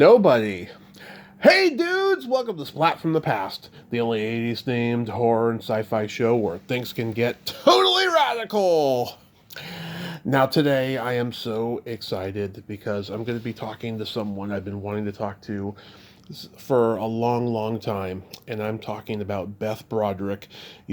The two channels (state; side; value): identical; both; correlation 1.00